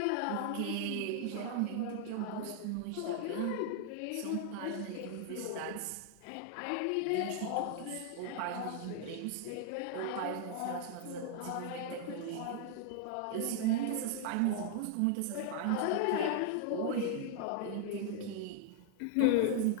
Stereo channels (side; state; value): both; different; correlation 0.00